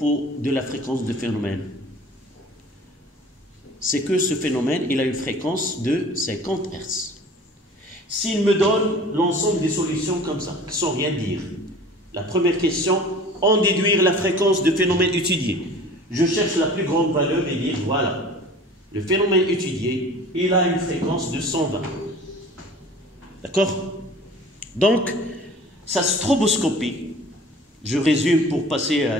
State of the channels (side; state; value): both; normal; correlation 0.44